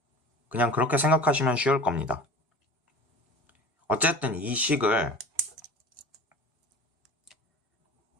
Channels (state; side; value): normal; both; correlation 0.38